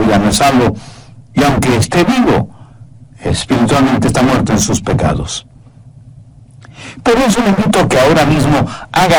no es salvo, y aunque esté vivo, espiritualmente está muerto en sus pecados. Por eso le invito a que ahora mismo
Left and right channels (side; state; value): both; identical; correlation 1.00